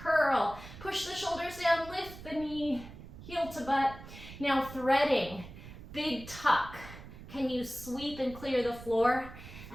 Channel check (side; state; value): right; noise; rumble, 15 dB below the sound